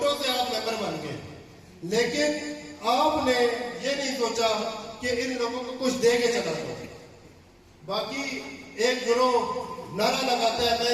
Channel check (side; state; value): both; identical; correlation 1.00